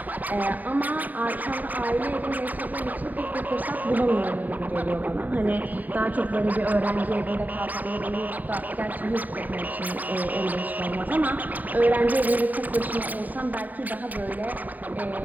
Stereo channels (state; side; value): late; left; 0.083 ms